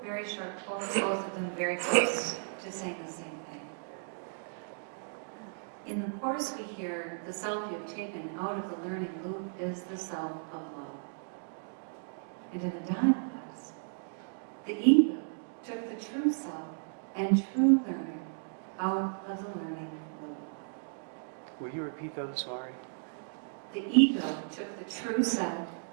very short quotes, both of them very close to saying the same thing. In the Course we hear, the self you have taken out of the learning loop is the self of love. And in the dialogues, the ego took the true self and true learner out of the learning loop. Will you repeat that? I'm sorry. The ego took the true self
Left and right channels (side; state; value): left; silent; digital silence